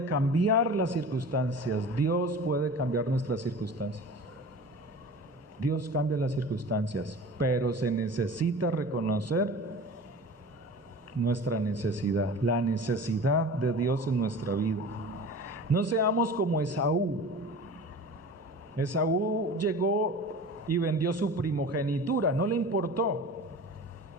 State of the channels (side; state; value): both; normal; correlation 0.37